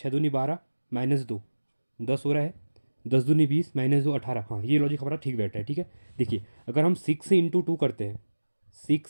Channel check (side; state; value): both; inverted; correlation -1.00